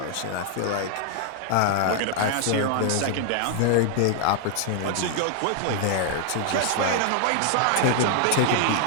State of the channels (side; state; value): both; different; correlation 0.00